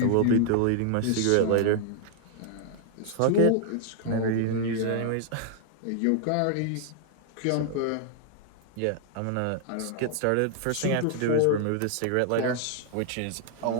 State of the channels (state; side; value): different; both; correlation 0.00